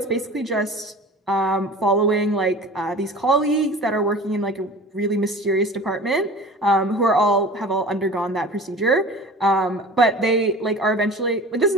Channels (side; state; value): both; normal; correlation 0.39